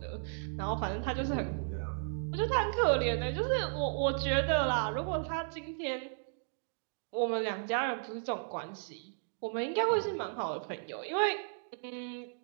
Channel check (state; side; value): silent; left; digital silence